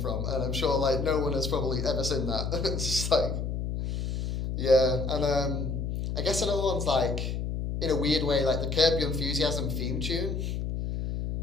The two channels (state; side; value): noise; left; hum, 2 dB below the sound